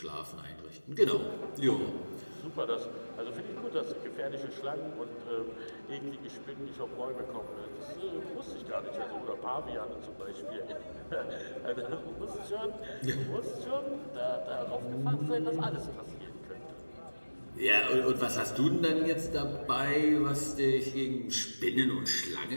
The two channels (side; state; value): both; inverted; correlation -1.00